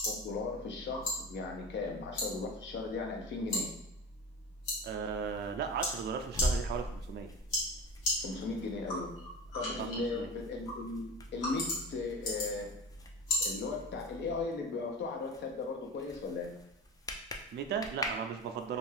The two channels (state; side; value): normal; both; correlation 0.31